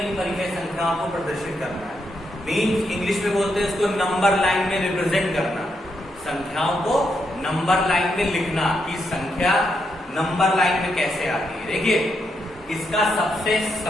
इन परिमेय संख्याओं को प्रदर्शित करना है। मीन्स इंग्लिश में बोलते हैं इसको नंबर लाइन में रिप्रेजेंट करना। संख्याओं को नंबर लाइन में लिखना कि संख्या नंबर लाइन में कैसे आती है। देखिए, इसका सबसे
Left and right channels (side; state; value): both; normal; correlation 0.81